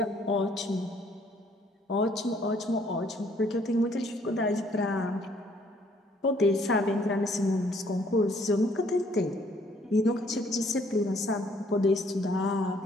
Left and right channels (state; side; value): normal; both; correlation 0.64